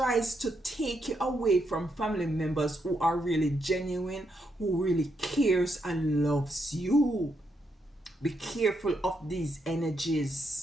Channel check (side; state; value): both; normal; correlation 0.79